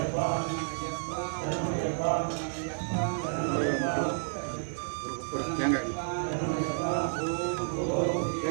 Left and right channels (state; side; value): silent; left; digital silence